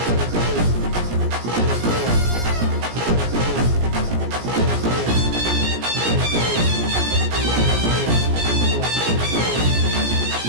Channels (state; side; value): late; left; 17 ms